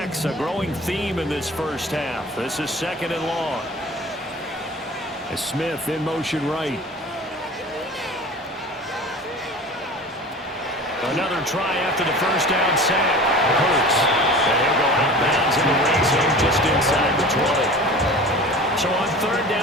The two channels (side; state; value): both; normal; correlation 0.39